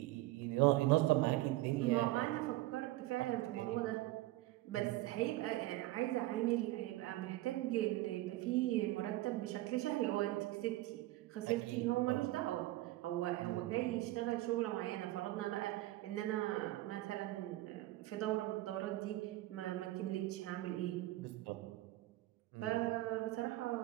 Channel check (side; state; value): left; quieter; 17.5 dB